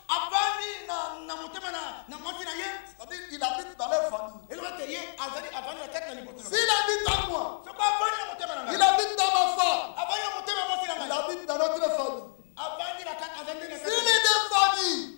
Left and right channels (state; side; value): silent; right; 58 dB below the other